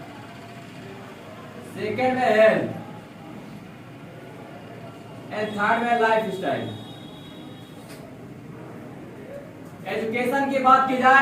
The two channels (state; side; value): identical; both; correlation 1.00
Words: सेकेंड में हेल्थ एंड थर्ड में लाइफ स्टाइल। एजुकेशन की बात की